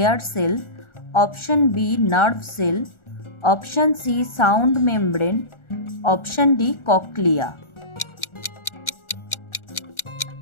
cell, option B nerve cell, option C sound membrane, option D cochlea.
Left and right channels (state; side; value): late; right; 1.4 ms